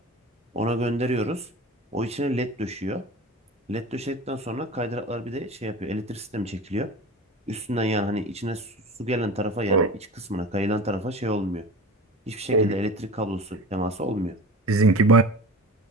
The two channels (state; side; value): normal; both; correlation 0.34